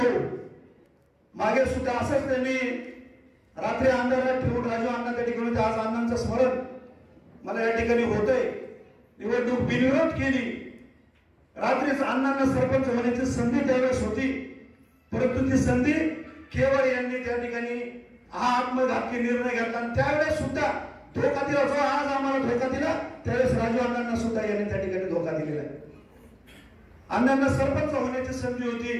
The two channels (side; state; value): both; identical; correlation 1.00